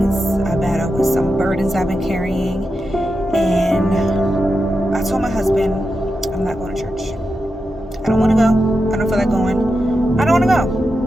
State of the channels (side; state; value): both; normal; correlation 0.89